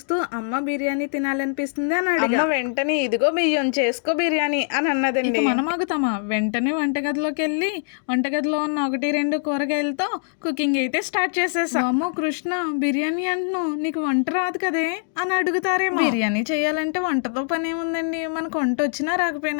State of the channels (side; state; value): right; silent; digital silence